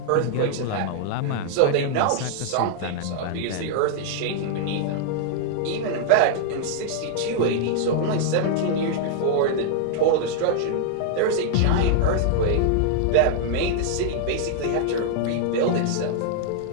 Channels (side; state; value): both; different; correlation -0.01